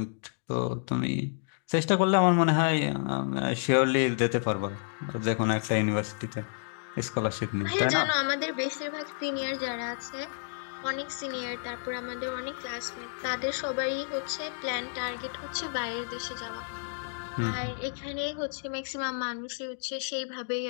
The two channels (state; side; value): silent; right; digital silence